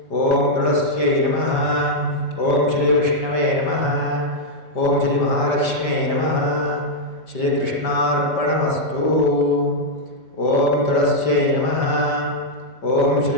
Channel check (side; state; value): right; late; 5.1 ms